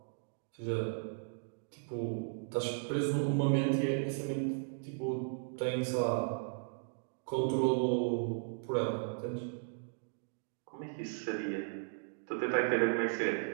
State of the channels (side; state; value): left; silent; digital silence